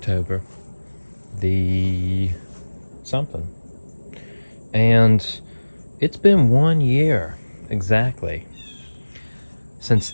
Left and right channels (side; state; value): both; inverted; correlation -1.00